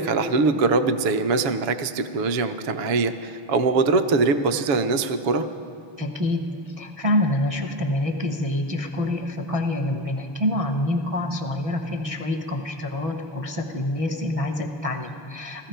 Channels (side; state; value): left; late; 7.1 ms